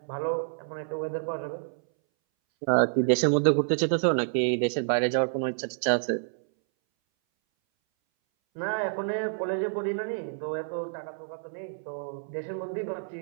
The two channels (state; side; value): silent; left; 59 dB below the other